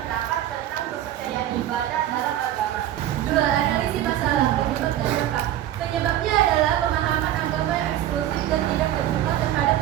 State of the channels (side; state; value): left; quieter; 12.3 dB